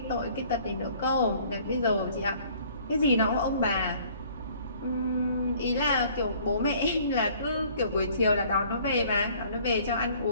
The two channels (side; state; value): both; inverted; correlation -0.56